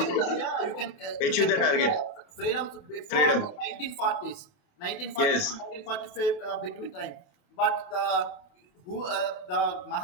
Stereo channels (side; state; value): right; late; 28 ms